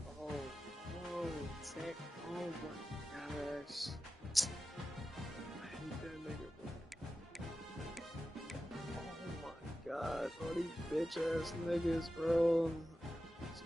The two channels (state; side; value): normal; both; correlation 0.93